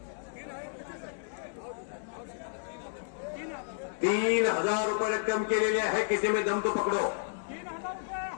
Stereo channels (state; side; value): silent; right; digital silence